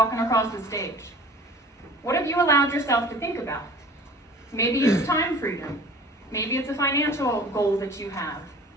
across the stage. What have you allowed yourself to think about? Maybe it's time freedom. Maybe it's a financial goal that you have.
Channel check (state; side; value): normal; both; correlation 0.45